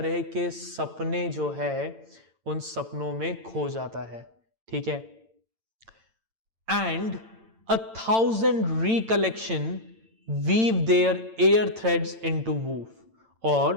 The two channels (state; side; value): late; left; 8.9 ms